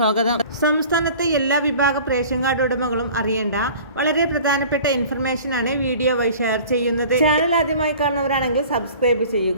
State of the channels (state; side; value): inverted; both; correlation -0.45